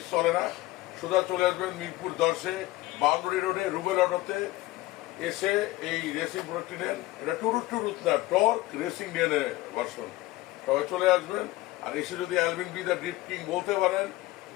চলে না, সোজা চলে আসবেন মিরপুর 10-এ বাউন্ডারি রোডে রুবেল অটোতে এসে এই রেসিং প্রোডাক্টটি নেন। এটা টুরুত টুরুত না, টর্ক রেসিং ডিএনএ ভার্সন। সবাই চলে আসবেন। আর এসে যদি Alvin B the drip king বলতে পারেন,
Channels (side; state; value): right; quieter; 18.1 dB